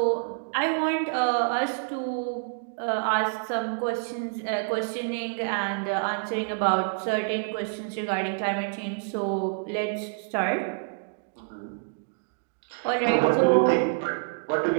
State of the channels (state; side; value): silent; left; digital silence